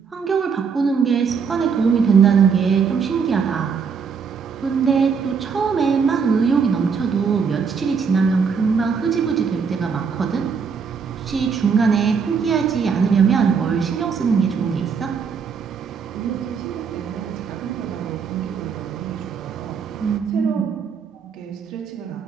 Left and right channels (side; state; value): left; quieter; 6.0 dB